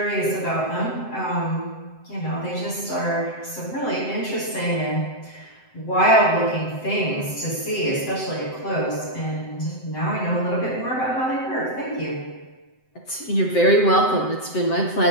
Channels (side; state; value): right; late; 7.8 ms